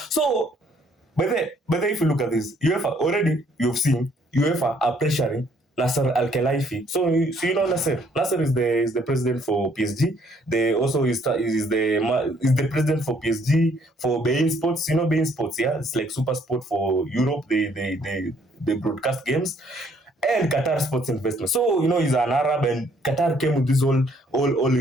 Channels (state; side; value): normal; both; correlation 0.65